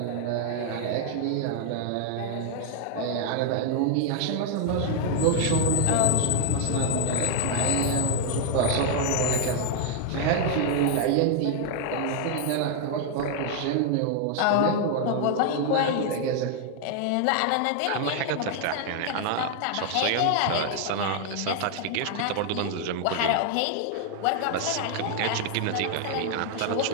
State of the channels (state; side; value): different; both; correlation 0.00